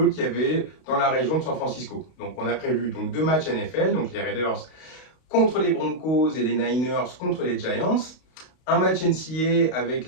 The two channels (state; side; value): late; right; 32 ms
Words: qu'il y avait dans la région de San Francisco. Donc on a prévu donc 2 matchs NFL, donc les Raiders contre les Broncos et les Niners contre les Giants, un match NCAA avec